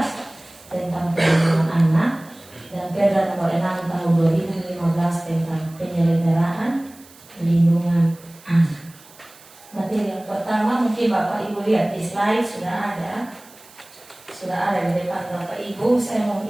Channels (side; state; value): right; noise; hiss, 24 dB below the sound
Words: tentang perlindungan anak, dan Perda nomor 6 tahun 2015 tentang penyelenggaraan perlindungan anak. Materi yang pertama mungkin Bapak Ibu lihat di slide sudah ada di depan Bapak Ibu. Saya mau